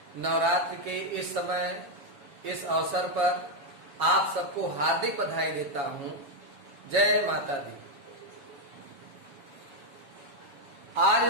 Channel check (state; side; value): late; left; 7.2 ms